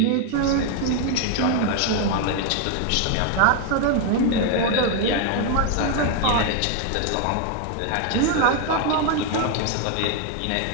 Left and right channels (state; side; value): different; both; correlation 0.01